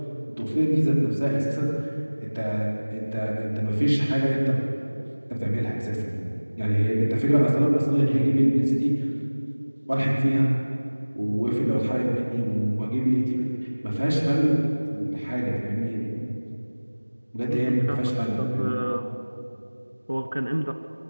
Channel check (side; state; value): both; inverted; correlation -1.00